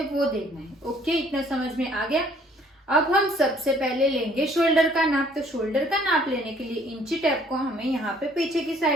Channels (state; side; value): normal; both; correlation 0.60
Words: वो देखना है। ओके, इतना समझ में आ गया। अब हम सबसे पहले लेंगे शोल्डर का नाप। तो शोल्डर का नाप लेने के लिए इंची टेप को हमें यहाँ पे पीछे की